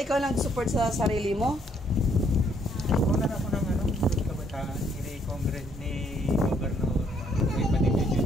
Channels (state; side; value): normal; both; correlation 0.68